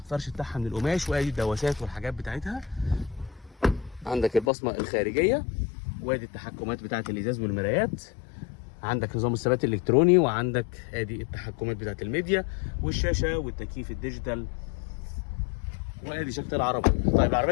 فرش بتاعها من القماش، وادي الدواسات والحاجات بتاعتها. عندك البصمه الخارجيه، وادي التحكمات بتاعه الازاز والمرايات. عندك نظام الثبات الالكتروني، وعندك ادي التحكمات بتاعه الميديا والشاشه والتكييف الديجيتال، وادي شكل العربيه. طيب العربيه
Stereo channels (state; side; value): drops out; right; at 4.5 s